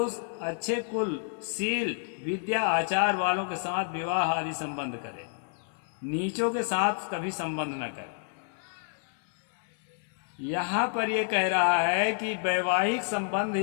अच्छे कुल, शील, विद्या, आचार वालों के साथ विवाह आदि संबंध करे, नीचों के साथ कभी संबंध न करे। यहाँ पर यह कह रहा है कि वैवाहिक संबंध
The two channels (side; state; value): right; silent; 58 dB below the other